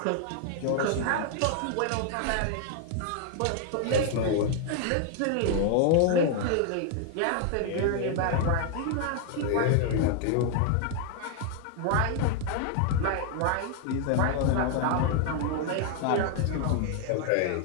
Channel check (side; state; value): both; different; correlation 0.00